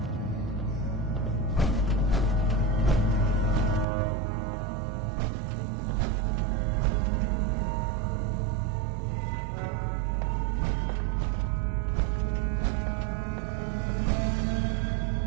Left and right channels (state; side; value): drops out; left; at 3.9 s